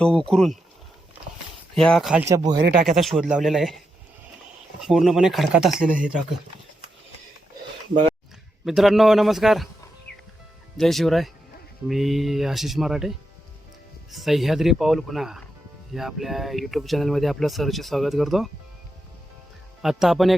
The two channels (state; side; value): normal; both; correlation 0.85